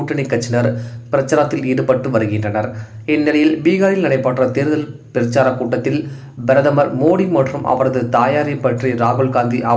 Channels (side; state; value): both; identical; correlation 1.00